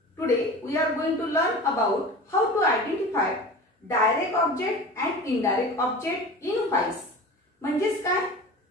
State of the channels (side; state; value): both; normal; correlation 0.35